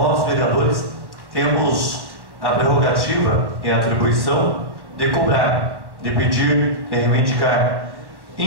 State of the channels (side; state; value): left; late; 1.1 ms